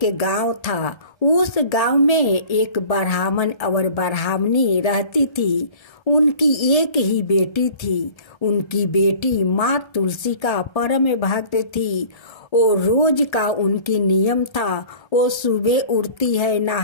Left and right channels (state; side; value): late; right; 1.3 ms